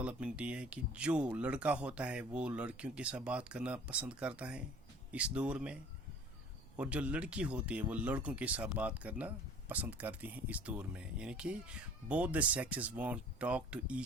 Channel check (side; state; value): right; noise; rumble, 23 dB below the sound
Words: ये है कि जो लड़का होता है वो लड़कियों के साथ बात करना पसंद करता है इस दौर में, और जो लड़की होती है वो लड़कों के साथ बात करना पसंद करती हैं इस दौर में. यानी कि both the sexes want to talk to